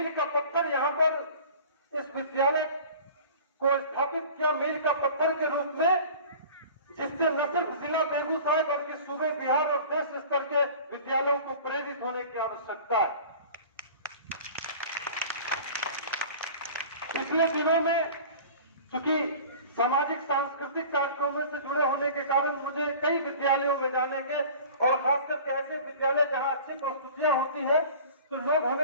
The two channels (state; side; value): inverted; both; correlation -0.42